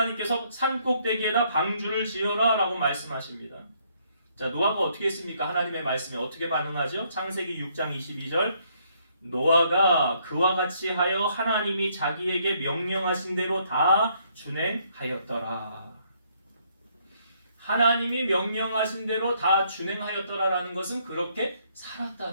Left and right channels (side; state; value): both; inverted; correlation -0.69